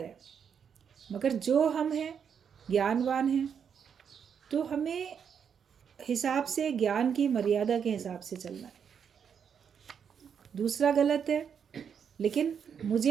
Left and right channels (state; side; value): quieter; left; 7.4 dB